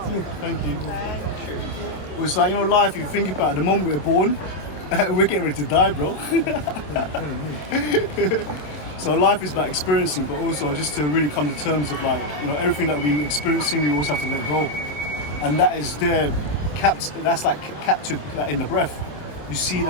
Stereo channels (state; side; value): late; right; 27 ms